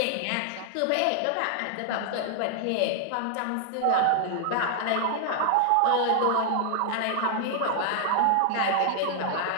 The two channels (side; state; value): both; different; correlation 0.00